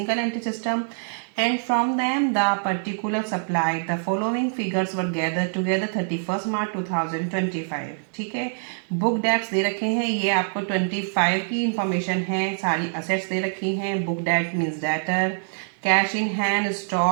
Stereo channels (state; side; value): silent; left; 62 dB below the other